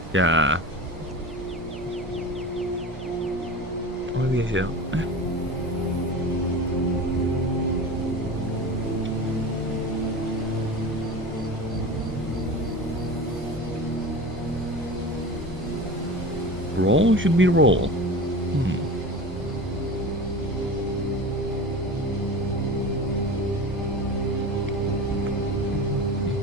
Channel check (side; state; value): both; normal; correlation 0.31